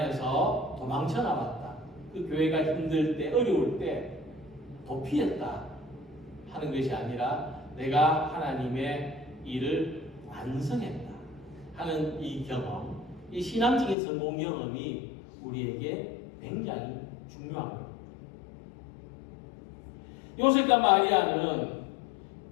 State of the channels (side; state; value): right; drops out; at 14.0 s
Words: 도망쳐 나왔다. 그 교회가 힘들 때, 어려울 때 도피했다 하는 것이 아니라 내가 하나님의 일을 완성했다 하는 이 경험, 이 신앙적인 성공 경험이 우리에게 굉장히 중요한 겁니다. 요셉과 마리아는